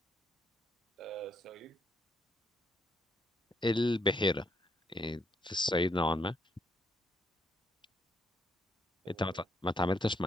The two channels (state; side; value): normal; both; correlation 0.73